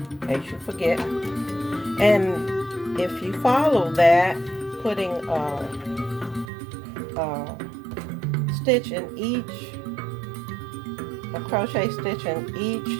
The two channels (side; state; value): left; drops out; at 6.5 s